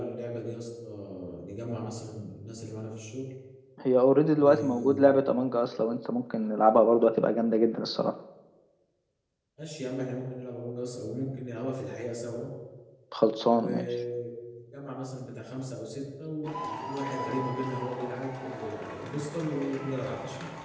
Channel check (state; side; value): identical; both; correlation 1.00